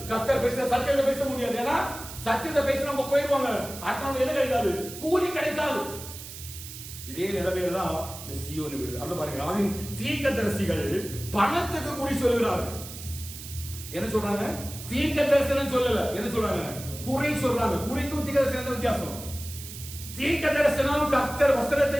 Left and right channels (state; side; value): noise; right; hiss, 12 dB below the sound